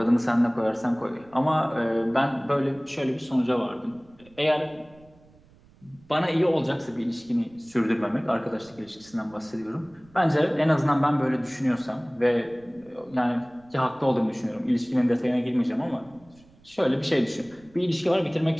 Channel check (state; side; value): noise; right; rumble, 28 dB below the sound